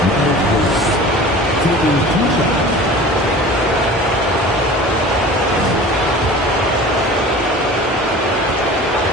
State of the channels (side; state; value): both; normal; correlation 0.40